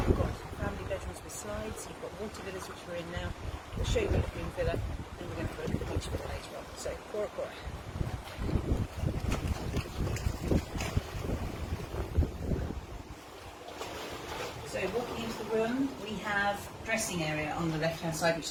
got family bedrooms with slides, you've got water villas, which we're in now. We'll show you the Lagoon Villa, and we're going to have a look at the beach villa later on. So, Cora Cora. So walking into the room, we have dressing area on the left hand side,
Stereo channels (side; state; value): both; identical; correlation 1.00